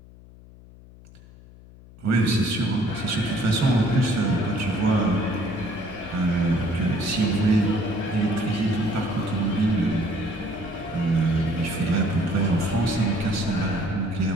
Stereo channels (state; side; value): noise; left; hum, 21 dB below the sound